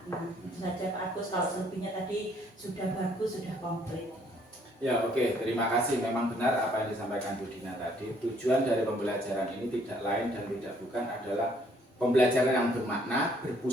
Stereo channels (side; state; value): both; normal; correlation 0.64